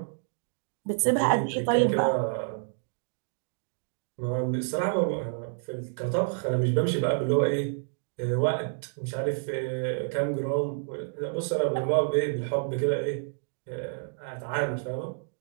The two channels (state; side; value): silent; left; digital silence